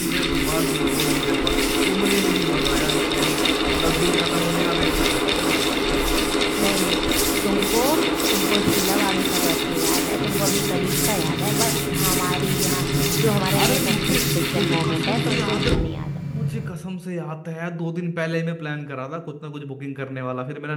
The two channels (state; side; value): identical; both; correlation 1.00